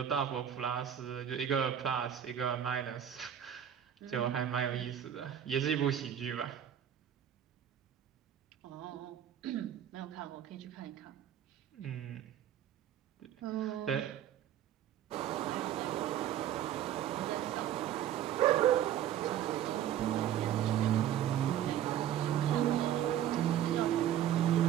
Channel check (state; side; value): quieter; left; 10.5 dB